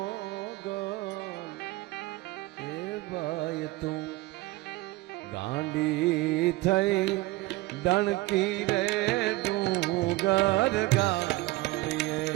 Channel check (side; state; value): left; quieter; 19.7 dB